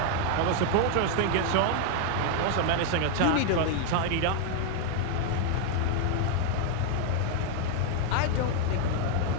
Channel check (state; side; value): different; both; correlation 0.00